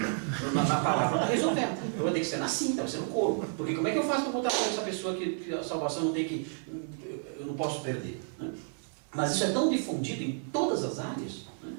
palavra não está resolvendo. Vai ter que ser na cinta, vai ser no corpo. Porque como é que eu faço para botar para essa pessoa que a salvação não tem que... eu não posso perder, né? Mas isso é tão difundido em todas as áreas, né,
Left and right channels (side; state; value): left; silent; 57 dB below the other